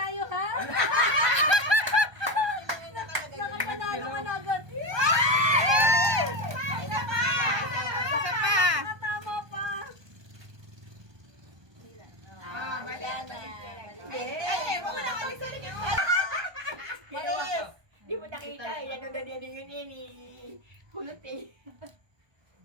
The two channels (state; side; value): late; left; 1.2 ms